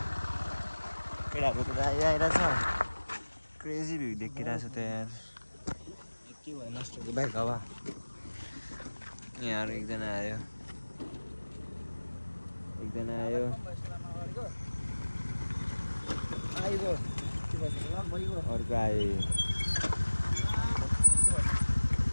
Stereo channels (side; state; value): both; inverted; correlation -1.00